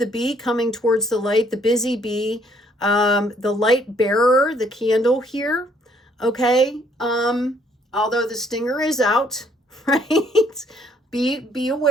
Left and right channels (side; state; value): both; normal; correlation 0.65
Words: bee coming towards the light, the busy bee, the light bearer, the candle here. Okay. Although the stinger is out, right? Be